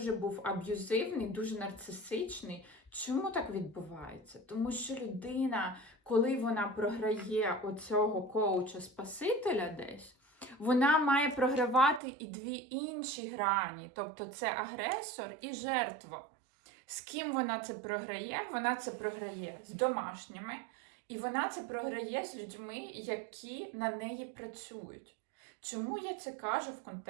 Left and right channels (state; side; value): drops out; left; at 12.0 s